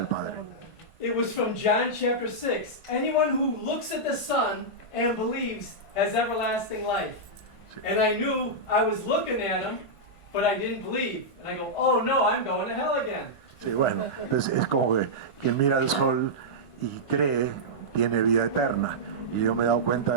Padre. It was from John chapter 6. Anyone who looks at the Son and believes has everlasting life. Sí. And I knew I was looking at him, but I didn't believe. And I go, oh no, I'm going to hell again. Sí, bueno, entonces es como que quien mira al sol y cree tiene vida eterna. Y yo me he dado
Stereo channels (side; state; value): right; late; 1.5 ms